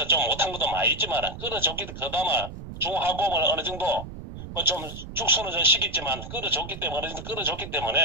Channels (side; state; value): right; noise; rumble, 11 dB below the sound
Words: 좀 못한 것도 많이 있지만 끌어줬기 그나마 중하고을 어느 정도 뭐 좀 축소는 좀 시켰지만 끌어줬기